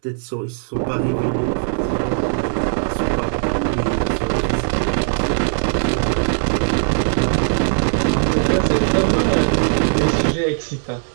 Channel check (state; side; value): silent; left; 66 dB below the other